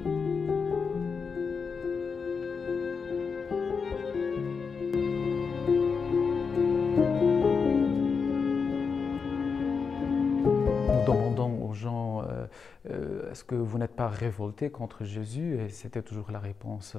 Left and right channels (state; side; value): quieter; right; 5.5 dB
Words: Nous demandons aux gens, est-ce que vous n'êtes pas révoltés contre Jésus? Et c'était toujours la réponse,